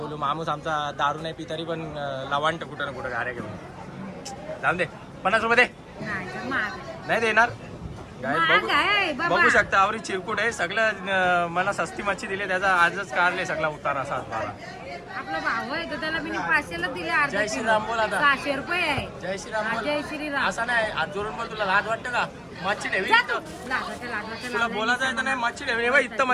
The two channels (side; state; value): both; identical; correlation 1.00